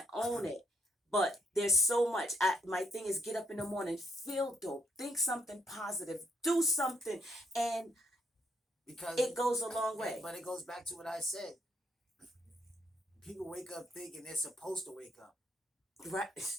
own it. But there's so much. My thing is get up in the morning, feel dope, think something positive, do something, and because it goes a long way. But it goes back to what I said. People wake up thinking they're supposed to wake up.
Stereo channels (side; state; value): both; normal; correlation 0.72